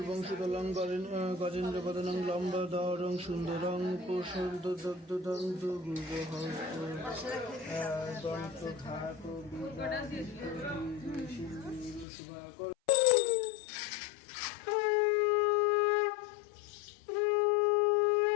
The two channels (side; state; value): right; drops out; at 12.1 s